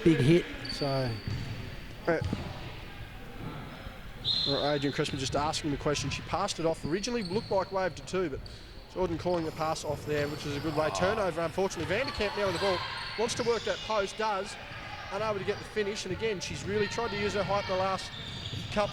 hit. So Adrian Crespin just asking the question. She passed it off. Originally looked like wave to 2, but Jordan calling the pass off there, which is a good way. Turnover, unfortunately. Vanderkamp now with the ball. Wants to work that post, does. Unable to get the finish, and again, she's really tried to use her height in the last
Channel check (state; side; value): identical; both; correlation 1.00